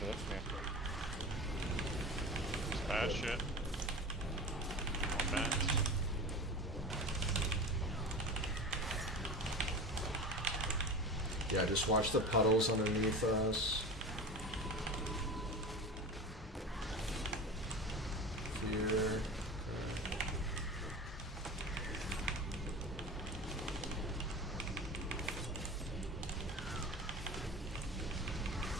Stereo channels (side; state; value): both; normal; correlation 0.30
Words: this, yeah. It's bad shit. More bats. Yeah, just watch the puddles underneath us. Fear.